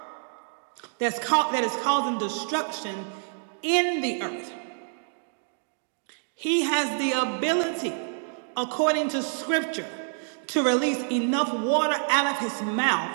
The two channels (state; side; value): silent; left; digital silence